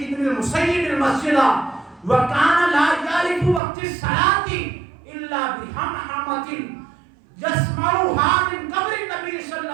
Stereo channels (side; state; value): left; drops out; at 3.6 s